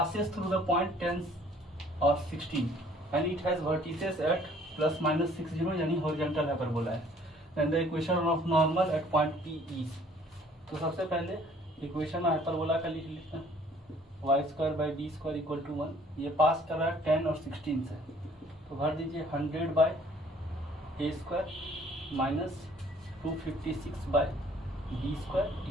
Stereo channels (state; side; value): normal; both; correlation 0.57